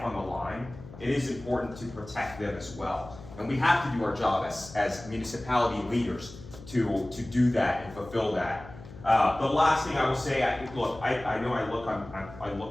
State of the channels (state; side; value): noise; left; hum, 16 dB below the sound